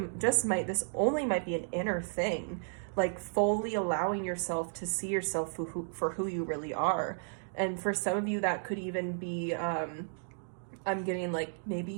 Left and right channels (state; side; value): silent; left; digital silence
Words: just might, this only might be an inner thing, like fully allowing yourself to see yourself for who you really are. And for some of you, that could even be, I'm getting like,